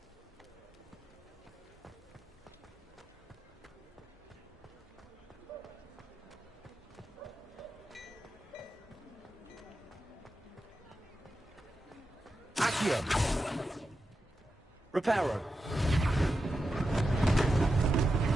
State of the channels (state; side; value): normal; both; correlation 0.90